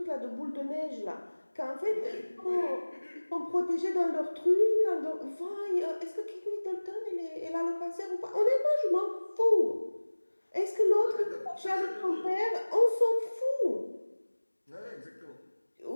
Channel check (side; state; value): both; inverted; correlation -1.00